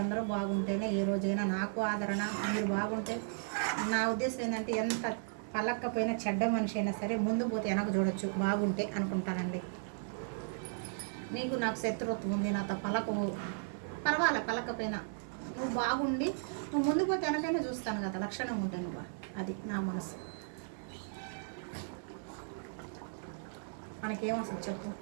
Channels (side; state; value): left; silent; digital silence